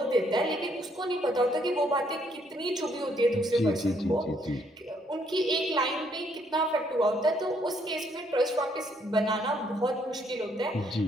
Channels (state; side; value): normal; both; correlation 0.70